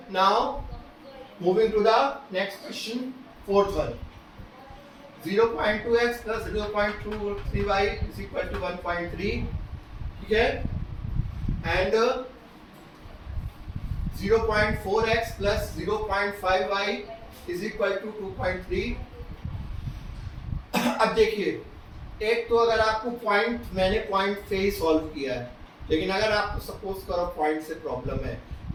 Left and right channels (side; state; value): both; identical; correlation 1.00